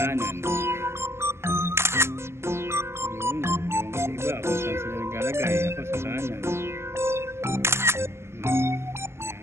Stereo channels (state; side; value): late; left; 0.12 ms